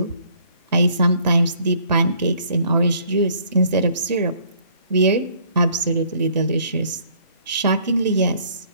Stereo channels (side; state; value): both; inverted; correlation -0.60